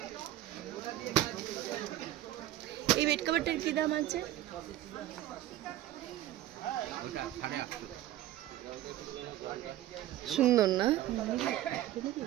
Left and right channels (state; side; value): quieter; left; 13.9 dB